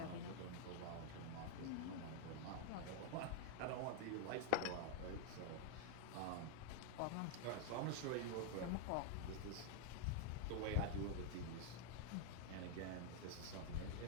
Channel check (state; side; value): different; both; correlation 0.00